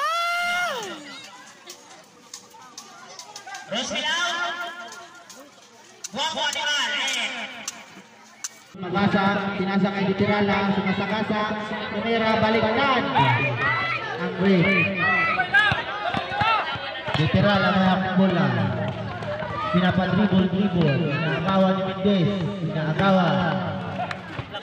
Rosmilau. Buang animal. Pinasa kay Titirala, sumasakasa, tumira, balikan. Ang break. Titirala ng bola. Pinapadribol, inaagawan ni Mendez,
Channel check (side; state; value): both; identical; correlation 1.00